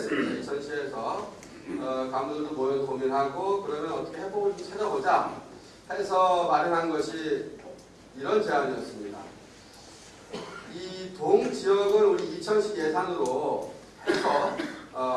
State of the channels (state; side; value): identical; both; correlation 1.00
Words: 이천시에서 간부들도 모여서 고민하고 그러면 어떻게 해법을 좀 찾아보자 해서 마련한 것이 이런 제안이었습니다. 이 동 지역을 우리 이천시 예산으로 해서